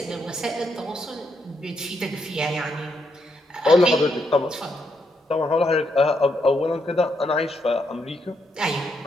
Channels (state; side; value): normal; both; correlation 0.79